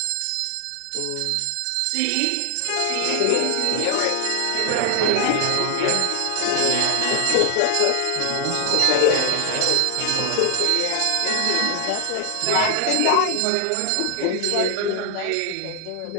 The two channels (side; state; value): both; different; correlation 0.00